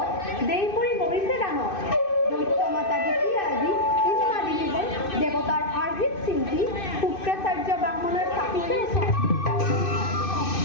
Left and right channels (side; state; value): right; late; 2.6 ms